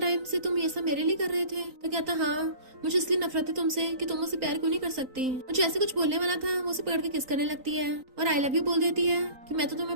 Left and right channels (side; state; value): left; late; 3.9 ms